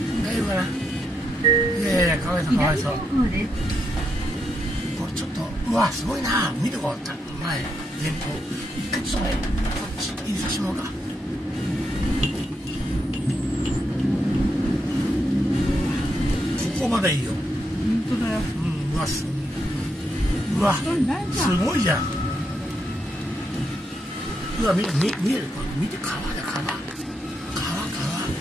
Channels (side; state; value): both; normal; correlation 0.80